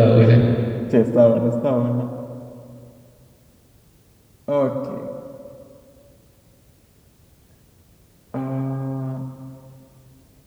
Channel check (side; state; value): both; identical; correlation 1.00